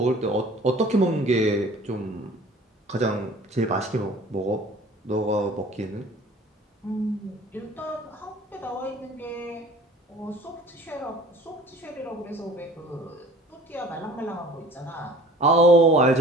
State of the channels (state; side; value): normal; both; correlation 0.47